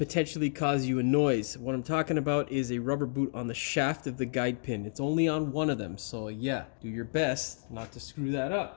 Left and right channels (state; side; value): silent; right; digital silence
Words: cause you a noise. What I'm talking about is a rubber boot on the shaft of the guide pin. It's only on one of them, so yeah, do your best not to screw that